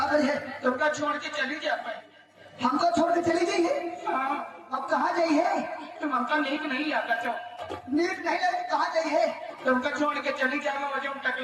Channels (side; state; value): both; identical; correlation 1.00